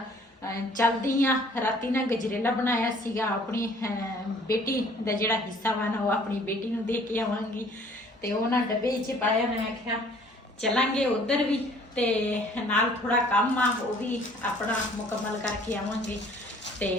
चलदी हाँ। राती ना गजरेला बनाया सीगा, अपनी बेटी का जिहड़ा हिस्सा वा ना वो अपनी बेटी नूं दे के आवांगी। तो वह ना डब्बे च पाया, मैं आख्या चलांगे उधर भी, तो नाल थोड़ा काम आ वो भी अपना मुकम्मल करके आवांगे। तो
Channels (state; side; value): normal; both; correlation 0.56